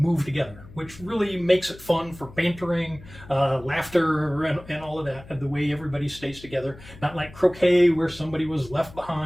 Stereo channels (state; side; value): noise; left; hum, 19 dB below the sound